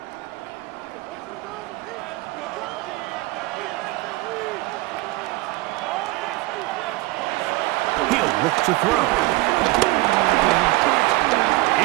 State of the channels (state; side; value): quieter; left; 21.0 dB